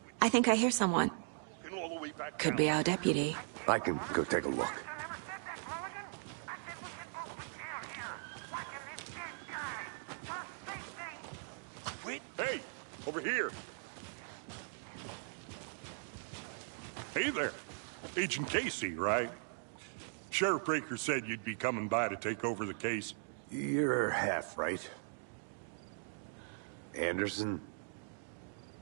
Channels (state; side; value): silent; left; digital silence